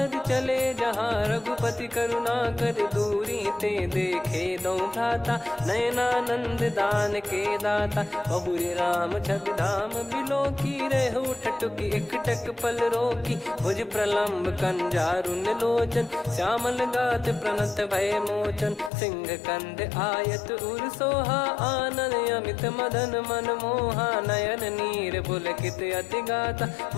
चले, जहाँ रघुपति करुणा कर दूरी ते देखे दो भ्राता। नयनानंद दान के दाता, बहुरे राम छवि धाम बिलोकी। रहु ठटुकी एकटक पल रोकी, भुज प्रलम्ब कंजारुन लोचन। श्यामल गात प्रणत भय मोचन, सिंह कंध आयत उर सोहा। आनन अमित मदन मन मोहा, नयन नीर पुलकित अति गाता।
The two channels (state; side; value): drops out; right; at 18.9 s